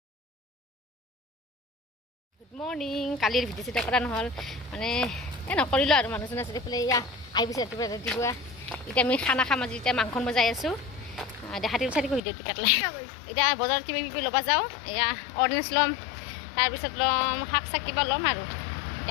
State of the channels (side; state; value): right; drops out; at 12.2 s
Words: গুড মৰ্ণিং কালিৰ ভিডিঅ' চিডিঅ' কৰা নহ'ল মানে নকৰিলোঁ আৰু মানুহজন আছে এইফালে এয়া আহিছে ৰাতিপুৱা এতিয়া আমি খানা খাম আজি এতিয়া মাংস বজাই আছোঁ দেখা দিব চাই ভিডিঅ'টো কাটলাই এতিয়া বজাৰত কিবা কিবি ল'ব যাওঁ এয়া অৰেঞ্জ ল'ম তাৰপিছত ল'ম শাক চাক কিবা ল'ম আৰু